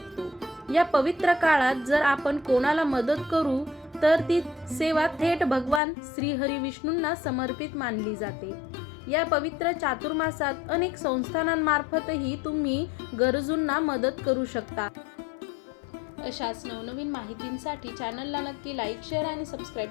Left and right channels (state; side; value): drops out; right; at 5.8 s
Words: या पवित्र काळात जर आपण कोणाला मदत करू तर ती सेवा थेट भगवान श्रीहरी विष्णूंना समर्पित मानली जाते. या पवित्र चातुर्मासात अनेक संस्थानांमार्फतही तुम्ही गरजूंना मदत करू शकता. अशाच नवनवीन माहितींसाठी चॅनलला नक्की लाईक, शेअर आणि सबस्क्राईब